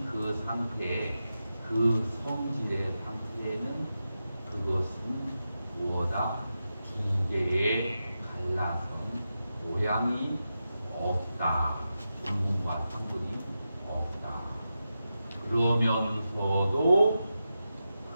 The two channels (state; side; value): inverted; both; correlation -0.90